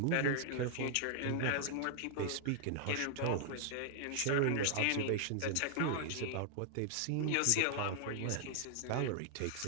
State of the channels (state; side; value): different; both; correlation 0.00